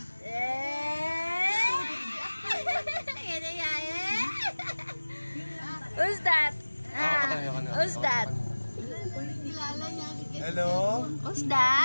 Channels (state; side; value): inverted; both; correlation -1.00